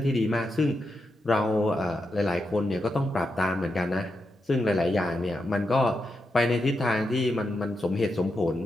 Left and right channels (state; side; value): normal; both; correlation 0.86